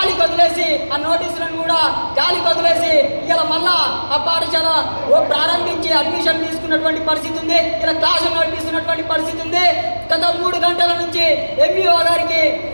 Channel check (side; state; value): both; inverted; correlation -1.00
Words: వదిలేసి, ఆ నోటీసులను కూడా గాలికి వదిలేసి ఇలా మళ్ళా ఆ పాఠశాల ప్రారంభించి అడ్మిషన్ తీసుకున్నటువంటి పరిస్థితి ఉంది. ఇలా క్లాసులు నడిపిస్తున్నటువంటి పరిస్థితి ఉంది. గత 3 గంటల నుంచి ఎంఈఓ గారికి